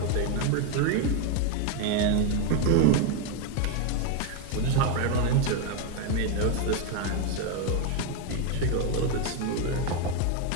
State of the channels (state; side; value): different; both; correlation 0.01